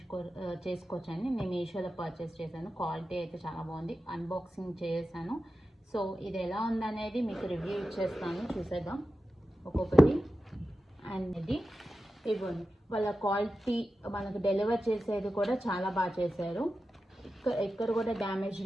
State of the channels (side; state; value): both; normal; correlation 0.93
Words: చేసుకోవచ్చండి. నేను మీషోలో పర్చేస్ చేశాను. క్వాలిటీ అయితే చాలా బాగుంది. అన్బాక్సింగ్ చేశాను. సో ఇది ఎలా ఉందనేది మీకు రివ్యూ ఇచ్చేస్తాను, చూసేద్దాం ఒక్కొక్కటి. అండ్ ఇది ఇవ్వండి, వాళ్ళ క్వాలిటీ మనకు డెలివర్ చేసేది కూడా చాలా బాగా చేశారు. ఎక్కడ కూడా డ్యామేజ్